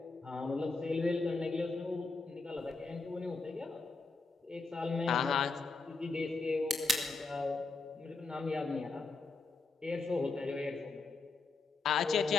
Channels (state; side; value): quieter; right; 3.6 dB